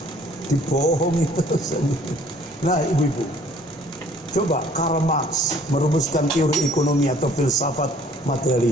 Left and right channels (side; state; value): both; normal; correlation 0.56